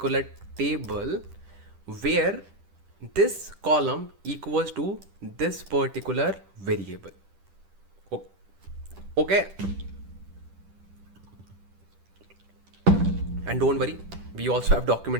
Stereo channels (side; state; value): left; late; 10 ms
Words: table where this column equals to this particular variable. Okay, and don't worry, we also have